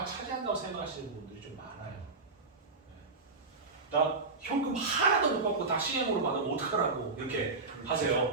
차지한다고 생각하시는 분들이 좀 많아요. 나 현금 하나도 못 받고 다 CM으로 받으면 어떡하라고, 이렇게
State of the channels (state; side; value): quieter; left; 3.9 dB